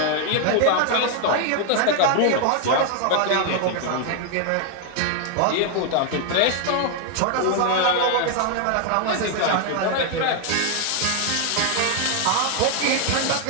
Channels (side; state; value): both; different; correlation 0.01